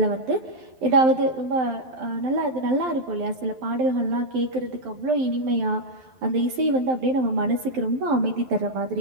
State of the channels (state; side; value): late; left; 12 ms